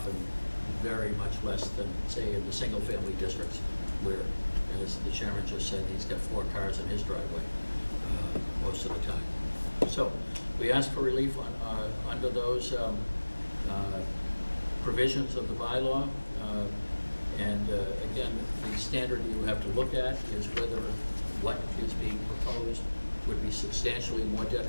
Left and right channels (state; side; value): inverted; both; correlation -1.00